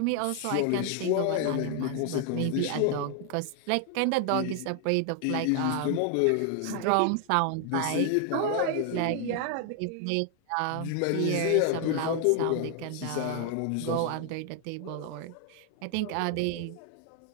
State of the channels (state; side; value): different; both; correlation 0.00